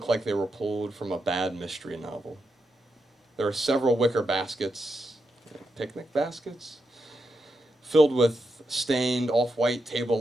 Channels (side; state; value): both; normal; correlation 0.85